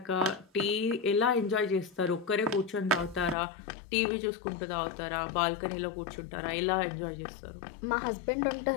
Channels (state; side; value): drops out; right; at 3.4 s